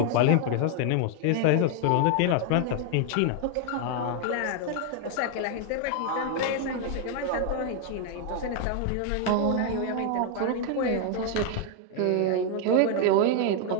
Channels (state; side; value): different; both; correlation 0.00